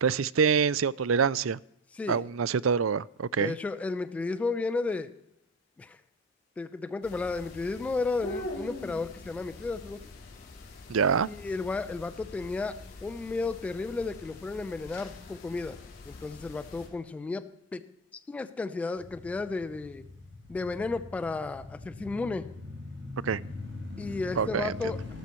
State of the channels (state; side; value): normal; both; correlation 0.23